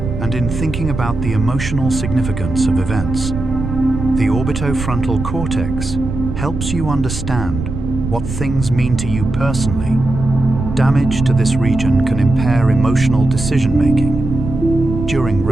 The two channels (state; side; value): noise; right; rumble, 6 dB below the sound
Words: and in thinking about the emotional significance of events. The orbitofrontal cortex helps you understand what things mean to you personally. Damage to this region can impair emotional decision-making. During